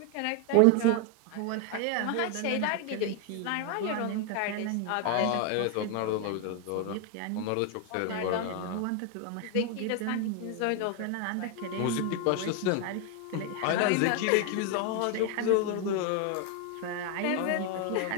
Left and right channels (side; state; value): both; different; correlation 0.01